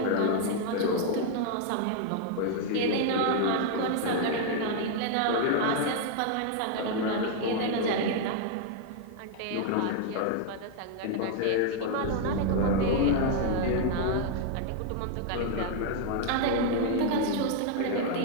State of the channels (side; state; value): both; different; correlation 0.00